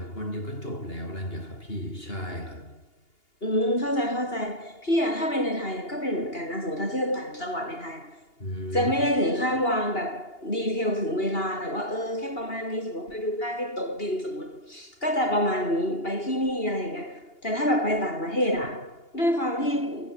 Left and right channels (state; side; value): late; right; 2.8 ms